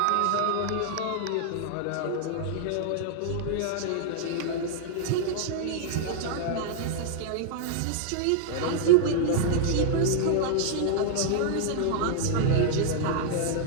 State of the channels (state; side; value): different; both; correlation -0.01